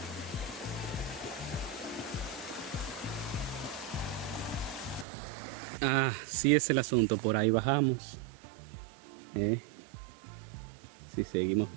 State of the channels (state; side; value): drops out; left; at 5.1 s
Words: Ah, sí es el asunto, por ahí bajamos. Si seguimos